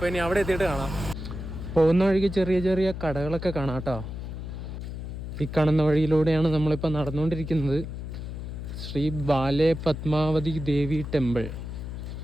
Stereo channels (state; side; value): noise; left; hum, 7 dB below the sound